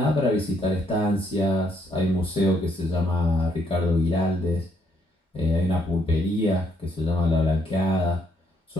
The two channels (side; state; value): both; normal; correlation 0.71